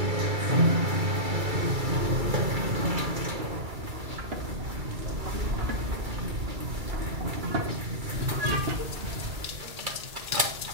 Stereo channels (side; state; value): left; late; 2.3 ms